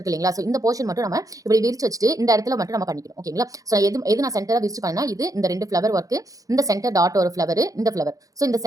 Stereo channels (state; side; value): late; left; 0.17 ms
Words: இல்லைங்களா? ஸோ இந்த போர்ஷன் மட்டும் நம்ம இப்படி விரிச்சு வச்சுட்டு இந்த இடத்துல மட்டும் நம்ம பண்ணிக்கணும். ஓகேங்களா? ஸோ எது நான் சென்டரா விரிச்சு பண்ணா இது இந்த 2 ஃப்ளவர் ஒர்க், இந்த சென்டர் டாட் ஒரு ஃப்ளவர், இந்த ஃப்ளவர். ஸோ இந்த